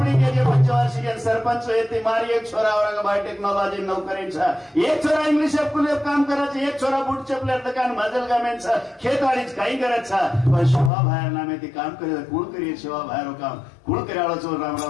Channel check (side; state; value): right; drops out; at 10.9 s